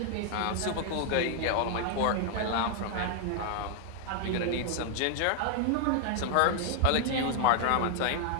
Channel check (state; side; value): different; both; correlation 0.00